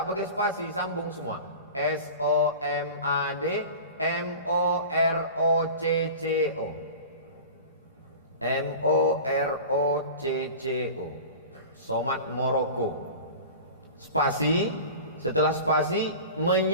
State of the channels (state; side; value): inverted; both; correlation -0.36